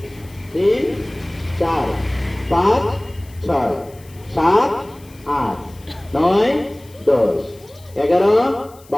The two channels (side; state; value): left; noise; hiss, 26 dB below the sound